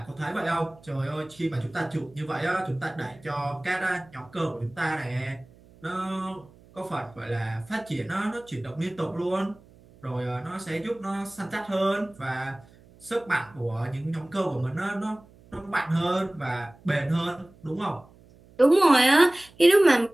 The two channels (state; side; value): noise; right; hum, 26 dB below the sound